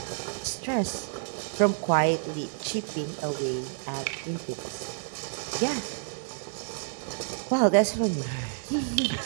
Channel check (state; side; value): silent; left; digital silence